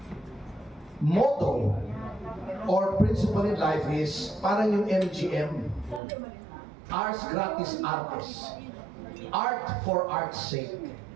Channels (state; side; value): drops out; left; at 6.0 s